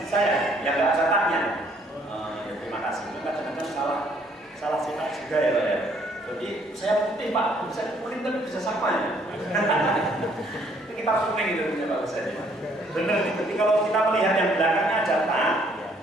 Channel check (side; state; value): both; normal; correlation 0.64